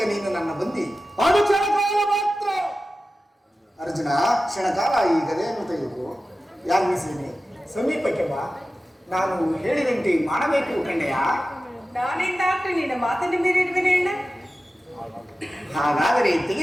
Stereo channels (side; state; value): both; normal; correlation 0.94